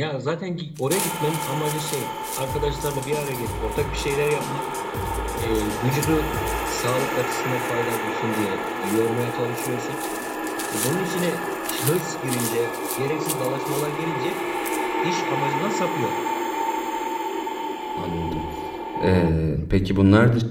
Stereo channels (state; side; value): identical; both; correlation 1.00